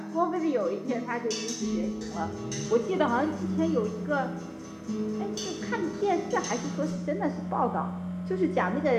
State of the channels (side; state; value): both; identical; correlation 1.00